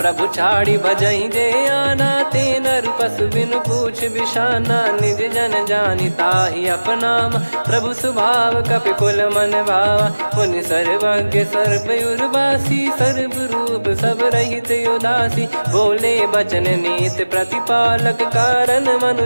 छाड़ी भजहि जे आना ते नर पशु बिनु पूछ बिशाना। निज जन जानि ताहि अपनाम प्रभु स्वभाव कपि कुल मन भावा। मुनि सर्वज्ञ सर्वयुर्वासी सर्व रूप सब रहित उदासी। बोले बचन नीत प्रतिपालक कारण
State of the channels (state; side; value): inverted; both; correlation -1.00